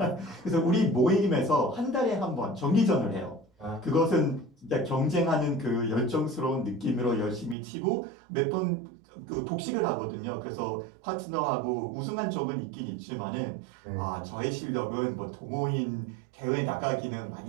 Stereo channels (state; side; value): drops out; left; at 7.6 s